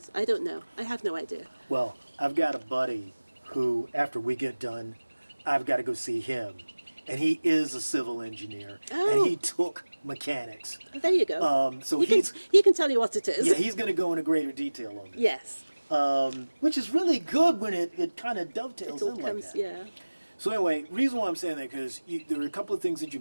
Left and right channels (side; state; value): both; inverted; correlation -1.00